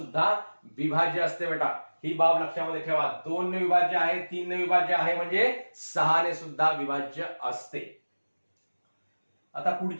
विभाज्य असते बेटा. ही बाब लक्षामध्ये ठेवा. 2 ने विभाज्य आहे, 3 ने विभाज्य आहे म्हणजे 6 ने सुद्धा विभाज्य असते. आता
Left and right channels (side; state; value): both; inverted; correlation -1.00